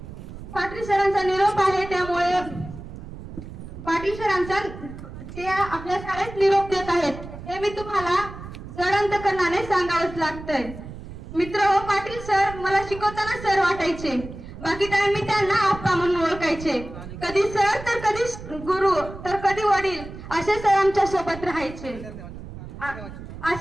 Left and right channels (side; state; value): right; noise; rumble, 12 dB below the sound